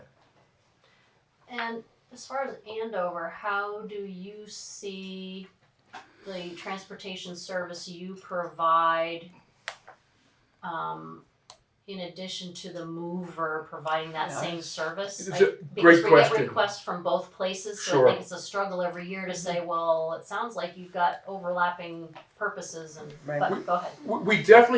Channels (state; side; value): identical; both; correlation 1.00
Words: And as far as Andover, how do you see the transportation service you provide in addition to the mover providing that same service? It's a great question. Because we get requests from both places, so Sure. I think it's a struggle every year to say, well, it sounds like you've got overlapping purposes, but go ahead. We definitely